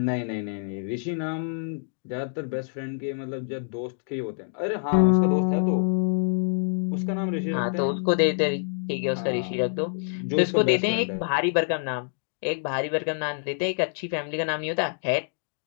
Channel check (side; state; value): right; silent; digital silence